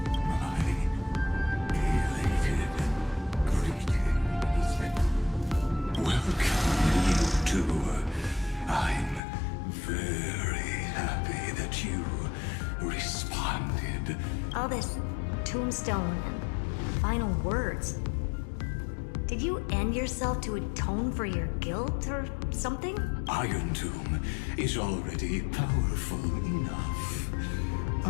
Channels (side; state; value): right; drops out; at 9.2 s